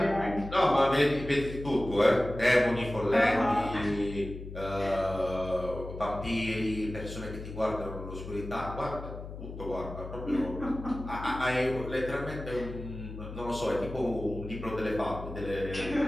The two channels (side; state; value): left; noise; hum, 11 dB below the sound